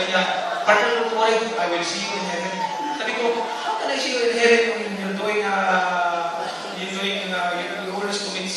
partner, don't worry, I will see you in heaven. Sabi ko, how can I see you in heaven when you're doing, you always commit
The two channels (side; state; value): both; identical; correlation 1.00